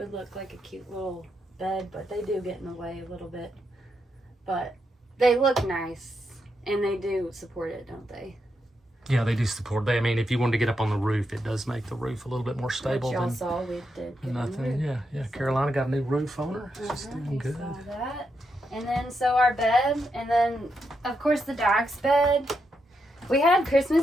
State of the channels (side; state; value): both; normal; correlation 0.83